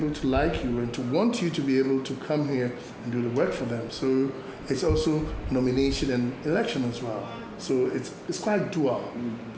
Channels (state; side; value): identical; both; correlation 1.00